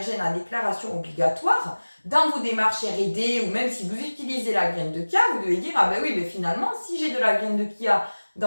à déclaration obligatoire, dans vos démarches R&D ou même si vous utilisez la graine de chia, vous devez dire ah ben oui, mais finalement, si j'ai de la graine de chia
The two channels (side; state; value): both; inverted; correlation -1.00